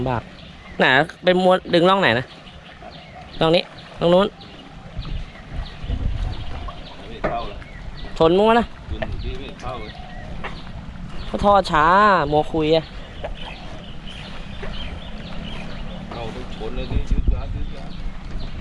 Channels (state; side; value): identical; both; correlation 1.00